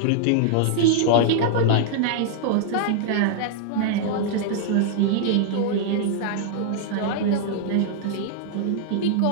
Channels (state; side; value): different; both; correlation -0.01